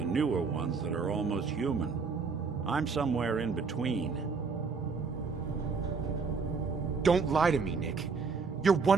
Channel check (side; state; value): left; quieter; 5.0 dB